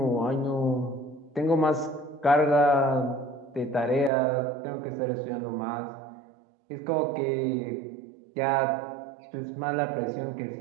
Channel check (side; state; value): left; drops out; at 4.1 s